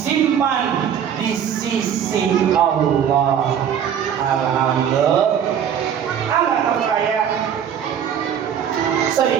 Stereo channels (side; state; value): left; quieter; 8.7 dB